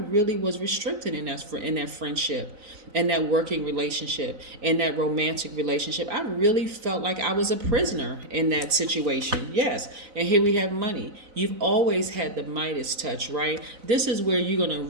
really was restricted in that friendship, in that working relationship, in that romantic relationship. I really felt like I was a prisoner in that situation. Yes. And here we have money. You've always had the Midas touch, right? This is where you're going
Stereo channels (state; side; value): late; left; 4.0 ms